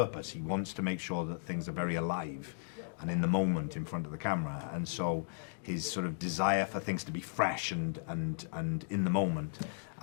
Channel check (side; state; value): right; silent; digital silence